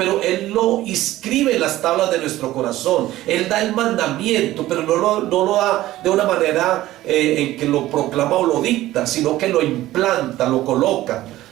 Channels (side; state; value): left; quieter; 15.6 dB